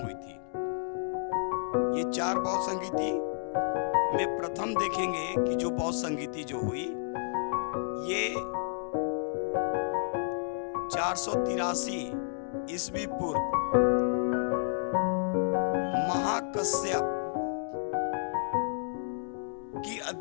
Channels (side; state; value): right; silent; digital silence